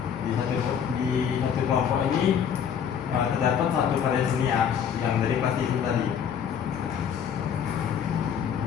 di satu kelompok ini terdapat satu karya seni ya, yang dari plastisin tadi.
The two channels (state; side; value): quieter; right; 8.0 dB